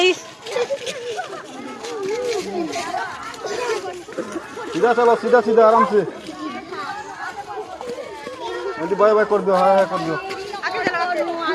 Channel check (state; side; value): identical; both; correlation 1.00